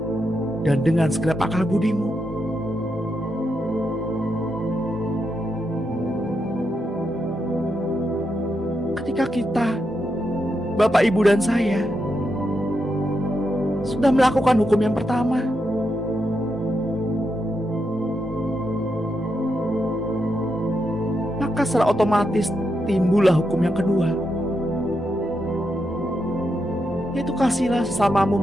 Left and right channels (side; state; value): both; normal; correlation 0.84